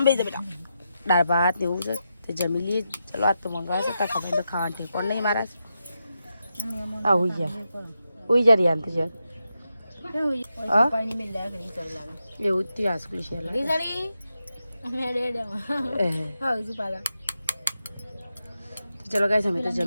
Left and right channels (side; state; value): both; inverted; correlation -0.87